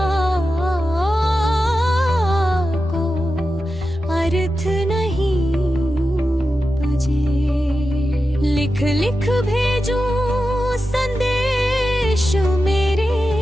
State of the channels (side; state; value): both; normal; correlation 0.91